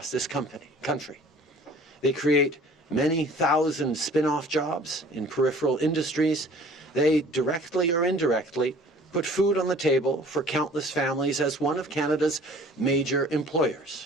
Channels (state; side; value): normal; both; correlation 0.50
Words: this country. They create many thousand spin-off jobs in peripheral industries. They directly or indirectly put food on the table for countless families as one of Canada's major